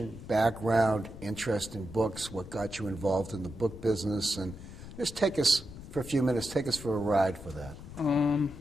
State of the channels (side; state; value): left; noise; rumble, 14 dB below the sound